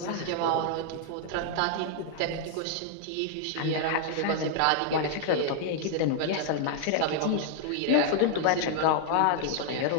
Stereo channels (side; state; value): both; different; correlation -0.01